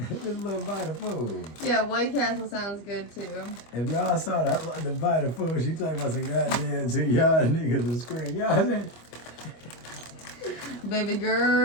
This little bite of food. Yeah, White Castle sounds good too. If y'all saw the bite of food, she talking about some goddamn to y'all niggas to scream. Y'all saying? Baby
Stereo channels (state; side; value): late; right; 25 ms